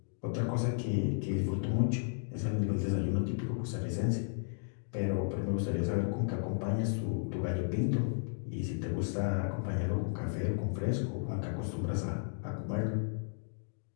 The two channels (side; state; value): right; silent; digital silence